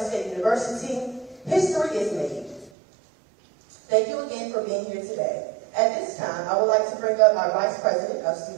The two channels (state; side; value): drops out; left; at 2.7 s